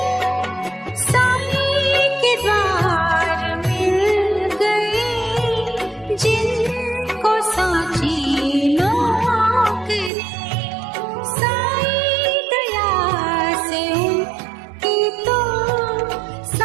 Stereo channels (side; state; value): left; drops out; at 10.1 s